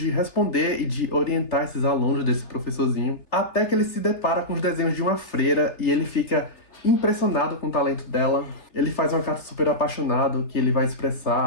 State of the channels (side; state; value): right; late; 3.4 ms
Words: responder e de orientar esses alunos desse professorzinho, até que ele se depara com os desenhos de uma freira e ele fica impressionado com o talento dela. Ele faz uma carta super apaixonado que ele vai